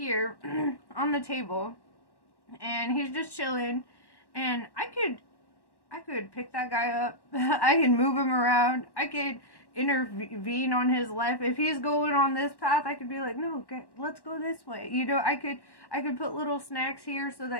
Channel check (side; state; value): right; late; 1.1 ms